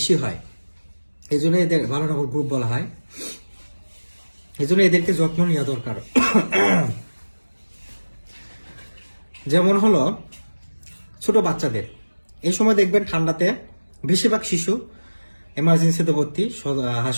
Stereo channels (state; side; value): inverted; both; correlation -1.00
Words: হয়। এই জন্য এদের ভালনারেবল গ্রুপ বলা হয়। এই জন্য এদেরকে যত্ন নেওয়া দরকার। যেমন হলো ছোট বাচ্চাদের এই সময় দেখবেন ঠান্ডাতে বেশিরভাগ শিশু এমার্জেন্সিতে ভর্তি